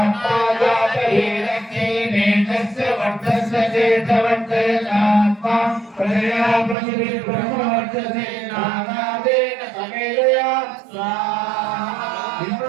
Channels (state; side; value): drops out; left; at 6.8 s